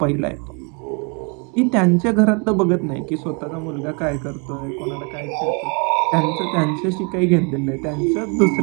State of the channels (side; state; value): left; quieter; 33.9 dB